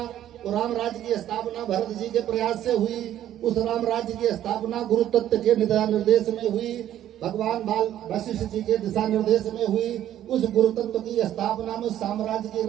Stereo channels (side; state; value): left; quieter; 11.8 dB